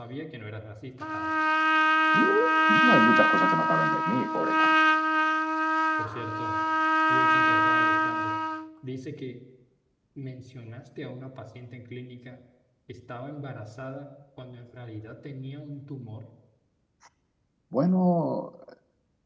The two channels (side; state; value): both; identical; correlation 1.00